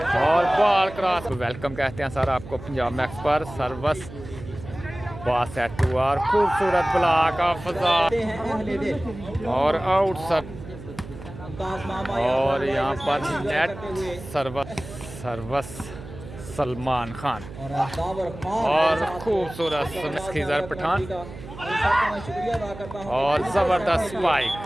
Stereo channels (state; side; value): noise; right; hum, 14 dB below the sound